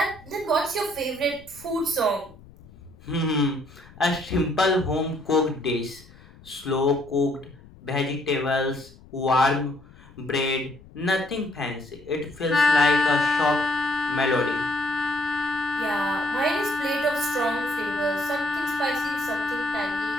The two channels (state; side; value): noise; left; rumble, 23 dB below the sound